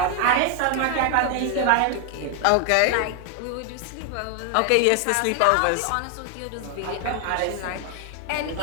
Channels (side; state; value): both; different; correlation 0.00